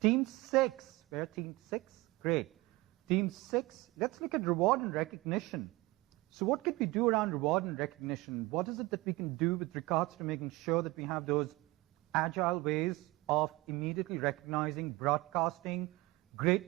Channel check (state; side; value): quieter; left; 21.6 dB